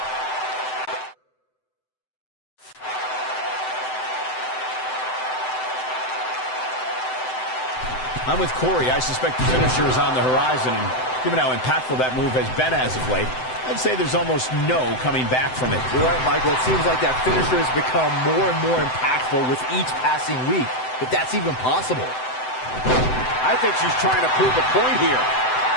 I'm with Corey. I suspect the finisher is on the horizon, and given how impactful that move has been as of late, I'd say there's almost no coming back from it. You're right, Michael. It seems like that finisher has become more and more impactful with each passing week, if that's even possible. I think she's trying to prove a point here.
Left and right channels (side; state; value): right; late; 7.8 ms